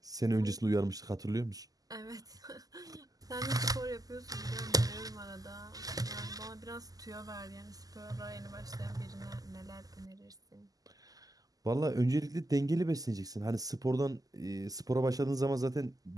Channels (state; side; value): late; left; 0.17 ms